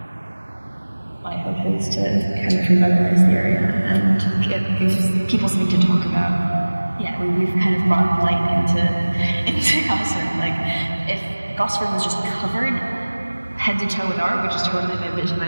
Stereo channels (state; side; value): inverted; both; correlation -1.00